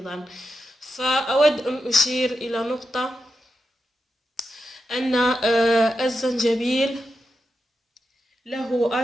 فأود أن أشير إلى نقطة، أن الزنجبيل له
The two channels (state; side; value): normal; both; correlation 0.88